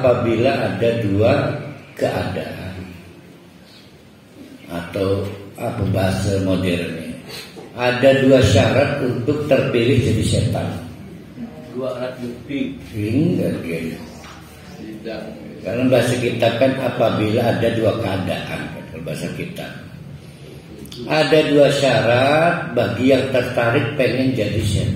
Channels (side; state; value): both; identical; correlation 1.00